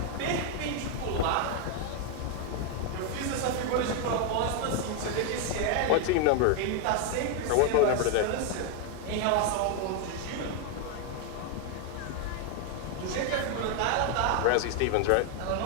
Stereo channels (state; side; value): different; both; correlation 0.01